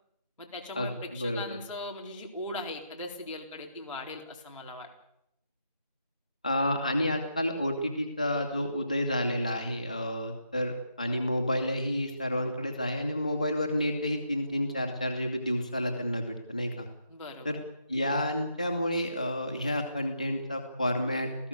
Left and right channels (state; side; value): inverted; both; correlation -0.78